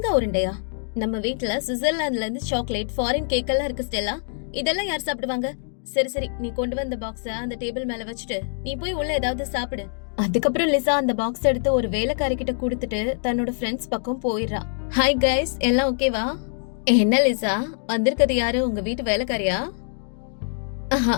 உருண்டையா? நம்ம வீட்டுல சுவிட்சர்லாந்துல இருந்து சாக்லேட், ஃபாரின் கேக் எல்லாம் இருக்கு ஸ்டெல்லா. இதெல்லாம் யார் சாப்பிடுவாங்க? சரி சரி, நீ கொண்டு வந்த பாக்ஸ அந்த டேபிள் மேல வச்சுட்டு நீ போய் உள்ள ஏதாவது சாப்பிடு. அதுக்கப்புறம் லிசா அந்த பாக்ஸ் எடுத்து ஒரு வேலைக்காரி கிட்ட கொடுத்துட்டு தன்னோட ஃப்ரெண்ட்ஸ் பக்கம் போயிடுறா. ஹாய் கைஸ், எல்லாம் ஓகேவா? என்ன லிசா, வந்திருக்கிறது யாரு? உங்க வீட்டு வேலைக்காரியா?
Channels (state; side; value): silent; right; 62 dB below the other